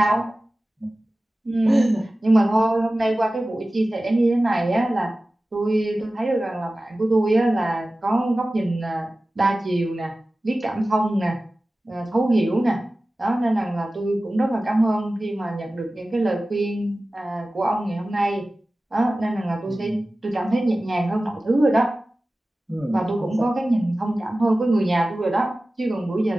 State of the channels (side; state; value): both; normal; correlation 0.96